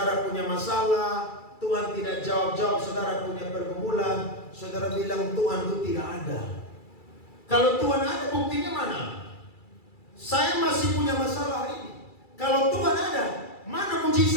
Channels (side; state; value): right; late; 2.3 ms